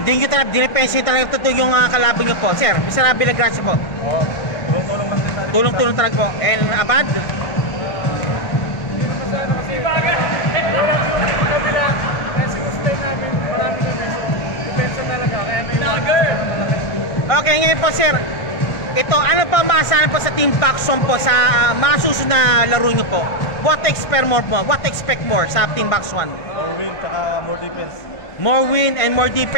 nyo talagang dinepensa nyo talagang totoo yung kalaban nyo po. Sir, Mr. Villagracia po. Oo, tulong-tulong lang din tayo. Tulong-tulong talaga po. And Abad? Okay, ngayon po sir, ito, ano pa maasahan po sa Team Box 1 po sa mga susunod na laro nyo po? What expect more po? What expect more sa Team Box 1? More win, saka more defense. More win and more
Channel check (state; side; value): late; right; 1.6 ms